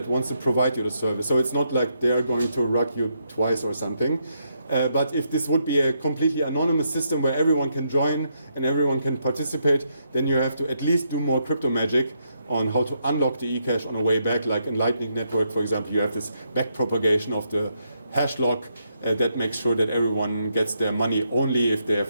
wants to provide you the service. So it's not like they are going to rug you twice or something. But if this would be a completely anonymous system where everyone can join and everyone can participate, then you have to at least do more crypto magic on how to unlock the eCash on a way back. Like in Lightning Network, for example, you have this back propagation of the hash lock that makes sure that everyone gets their money only if they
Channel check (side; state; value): both; inverted; correlation -0.79